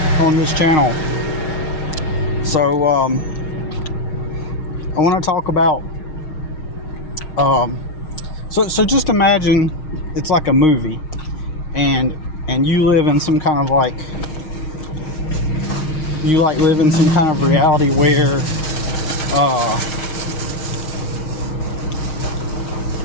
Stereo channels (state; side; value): late; right; 6.4 ms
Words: on this channel. So I want to talk about so just imagine it's like a movie, and you live in some kind of live in some kind of reality where